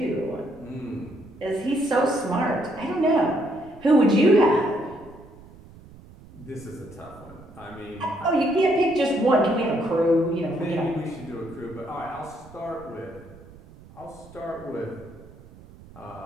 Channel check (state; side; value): noise; right; rumble, 21 dB below the sound